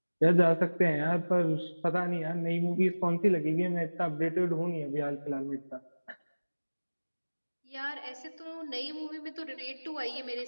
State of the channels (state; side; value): inverted; both; correlation -1.00